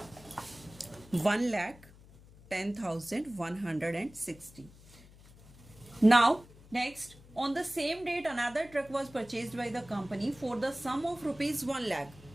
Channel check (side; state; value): left; noise; hum, 22 dB below the sound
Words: 1,10,160. Now next, on the same date another truck was purchased by the company for the sum of rupees 1 lakh.